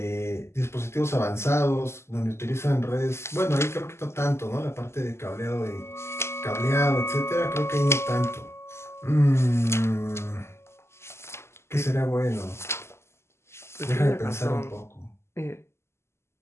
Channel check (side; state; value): right; late; 0.13 ms